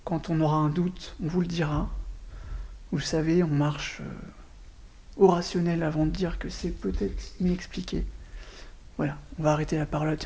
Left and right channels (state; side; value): identical; both; correlation 1.00